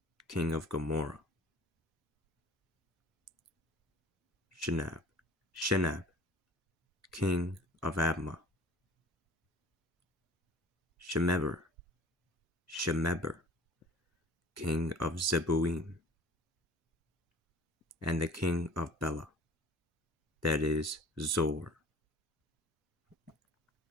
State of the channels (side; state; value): both; normal; correlation 0.46